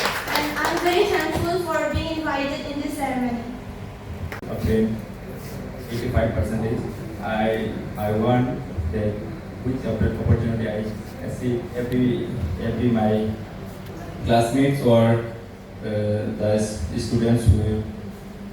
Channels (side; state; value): both; identical; correlation 1.00